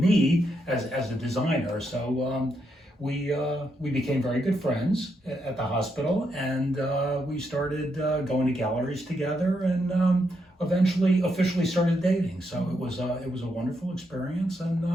as a designer. So we became very good friends at the hospital, and we started going to galleries together, and eventually officially started dating. So it was a wonderful experience, and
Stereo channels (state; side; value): normal; both; correlation 0.80